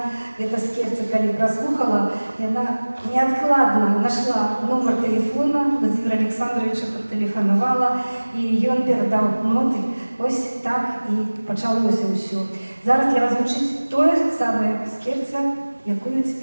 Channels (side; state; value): both; inverted; correlation -1.00